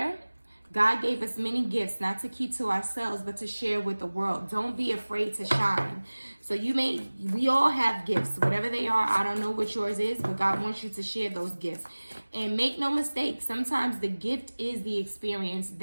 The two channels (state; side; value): inverted; both; correlation -1.00